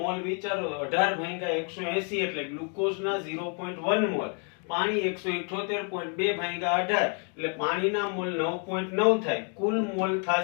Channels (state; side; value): quieter; right; 38.8 dB